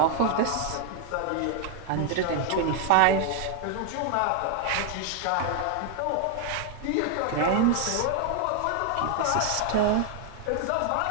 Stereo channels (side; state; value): both; different; correlation 0.00